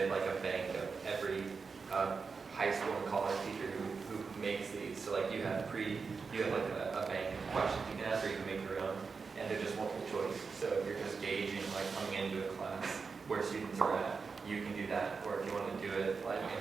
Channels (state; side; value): quieter; left; 5.0 dB